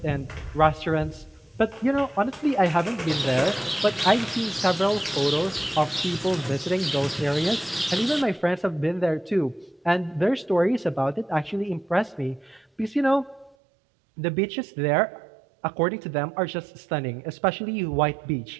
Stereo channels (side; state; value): left; drops out; at 13.6 s